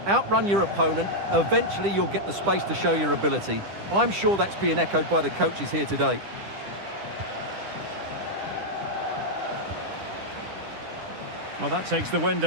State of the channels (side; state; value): left; late; 10 ms